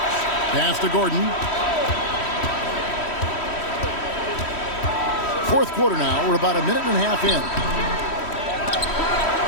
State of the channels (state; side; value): late; right; 3.1 ms